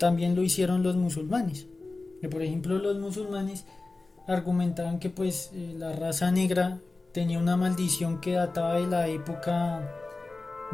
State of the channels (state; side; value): quieter; right; 3.4 dB